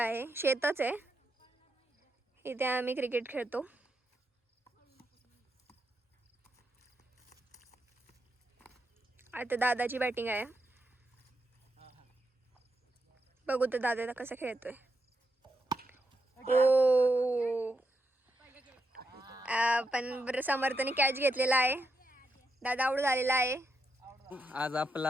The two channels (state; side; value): normal; both; correlation 0.83